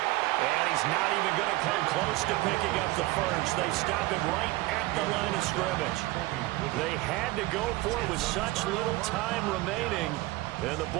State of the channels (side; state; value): left; quieter; 19.6 dB